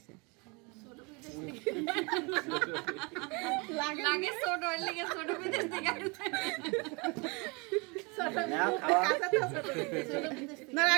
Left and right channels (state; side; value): quieter; left; 29.6 dB